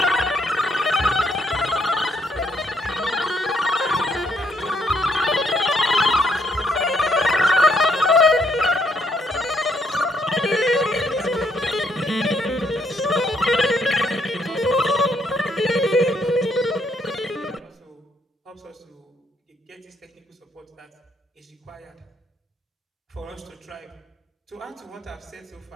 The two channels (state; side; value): normal; both; correlation 0.71